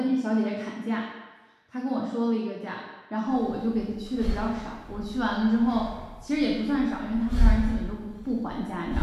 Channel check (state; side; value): identical; both; correlation 1.00